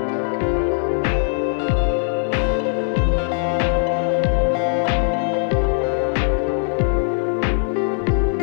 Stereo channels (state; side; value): silent; right; 66 dB below the other